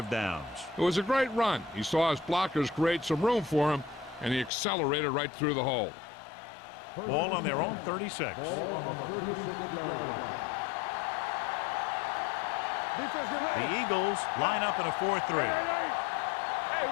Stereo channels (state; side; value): drops out; right; at 4.5 s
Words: downs. It was a great run. He saw his blockers create some room for him, and he accelerated right through the hole. Ball on their own 36. Ball on the 36-yard line. Watch screen. Defense get ready. The Eagles line up in a 4-3. Hey,